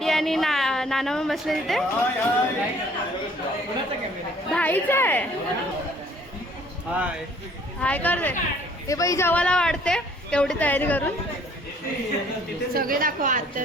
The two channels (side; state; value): both; normal; correlation 0.58